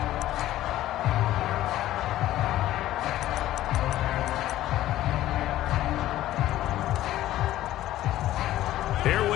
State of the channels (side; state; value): right; quieter; 14.2 dB